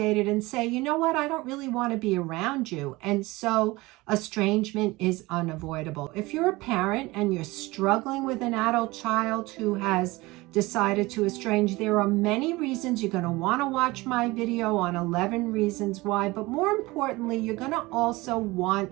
and say, you know what, I don't really want to be around you. And so estrangement is unavoidable. If you're a parent and you're struggling with an adult child who has decided to estrange, there are many reasons. You're going to want to watch my video on 11 reasons why, but more importantly, you're going to also want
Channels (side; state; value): left; quieter; 21.4 dB